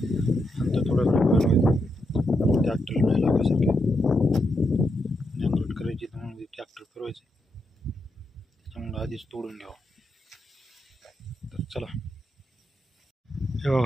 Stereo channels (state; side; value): normal; both; correlation 0.83